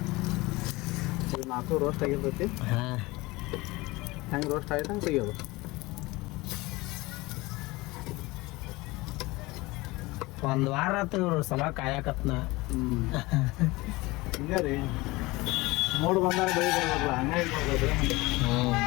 ಇದು 4 ರೋಸ್ಟ್ ಆಗಿರ್ತೈತಿ. ಹಾಂ ಹೆಂಗೆ ರೋಸ್ಟ್ ಆಯ್ತು ಹಂಗೆ ತೆಗಿಯೋದು. ಒಂದು ವಾರ ಆತು ಇವ್ರು ಸಲ ಕಾಯಕತ್ನ. ಹಿಂಗೆ ರೀ ಮೋಡ್ ಬಂದಾಗ ಬೆಳಿ ಬರ್ಬೇಕಲ್ಲ, ಹಂಗಾಗಿ ಬರ್ಬೇಕು.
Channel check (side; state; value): right; quieter; 21.7 dB